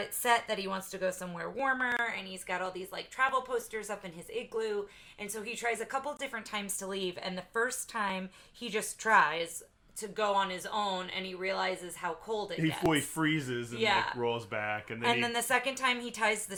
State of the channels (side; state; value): both; identical; correlation 1.00